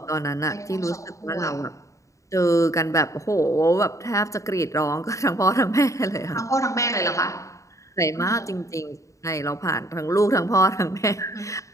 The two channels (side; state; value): right; late; 0.15 ms